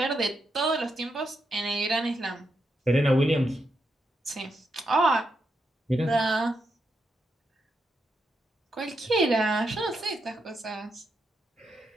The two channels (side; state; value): both; normal; correlation 0.83